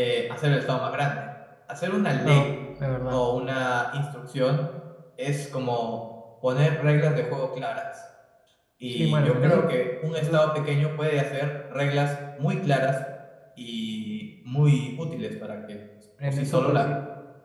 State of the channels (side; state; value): both; identical; correlation 1.00